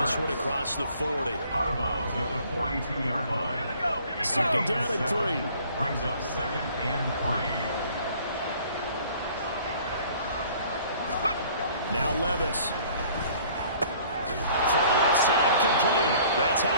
one across the 40. Out of bounds at the 42-yard line. 2nd down and 3. Brings up 2nd and 3. Now Levis. Throw left side complete. That's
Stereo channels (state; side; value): inverted; both; correlation -0.55